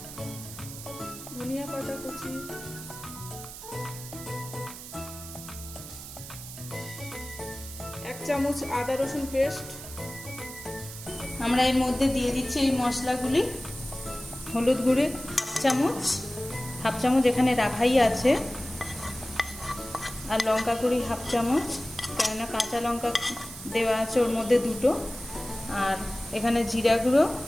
ধনিয়া পাতা কুচি, এক চামচ আদা রসুন পেস্ট। আমরা এর মধ্যে দিয়ে দিচ্ছি এই মশলাগুলি। হলুদ গুঁড়ো হাফ চামচ এখানে রাখাই আছে, আর লঙ্কা গুঁড়ি হাফ চামচ, কেননা কাঁচা লঙ্কা দেওয়া আছে ওর মধ্যে দুটো, আর এখানে জিরা গুঁড়ো,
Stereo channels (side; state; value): right; noise; hiss, 12 dB below the sound